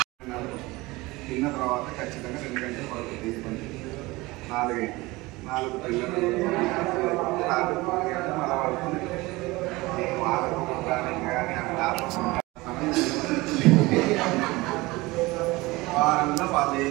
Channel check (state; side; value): quieter; left; 21.5 dB